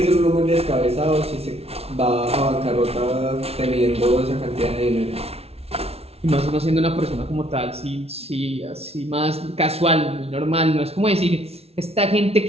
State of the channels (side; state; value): left; late; 0.30 ms